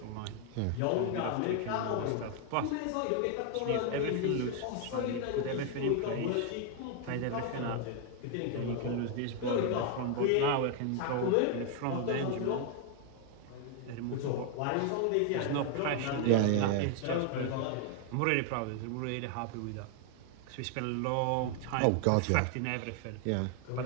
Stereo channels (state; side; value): different; both; correlation 0.00